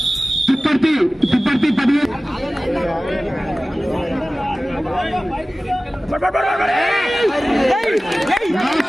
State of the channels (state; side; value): normal; both; correlation 0.97